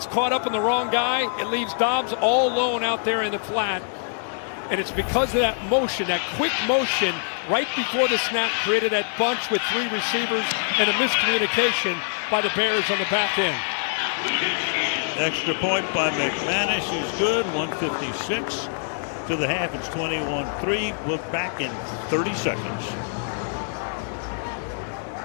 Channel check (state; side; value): silent; right; 62 dB below the other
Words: caught up in the wrong guy. It leaves Dobbs all alone out there in the flat. And it's because of that motion, that quick motion, right before the snap, created that bunch with 3 receivers and a miscommunication by the Bears on the back end. Extra point by McManus is good. 1:56 to the half. It's 21-3. We're back in 30 seconds.